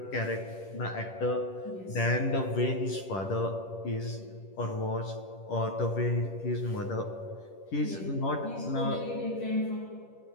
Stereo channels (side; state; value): right; late; 10 ms